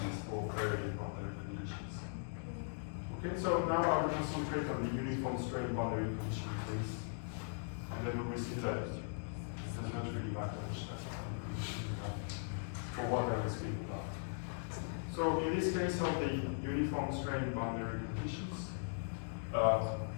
Okay, so now I will concentrate on the uniform strain boundary condition case, and then we will see that it does not really matter which type of boundary condition you have for what I will speak about. So in this case of the uniform strain boundary conditions,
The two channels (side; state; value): right; silent; digital silence